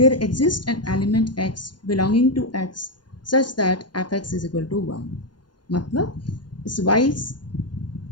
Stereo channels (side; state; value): right; late; 0.71 ms